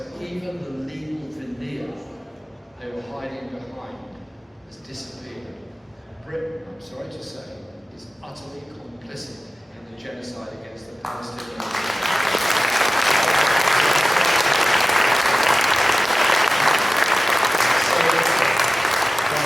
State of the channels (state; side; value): normal; both; correlation 0.96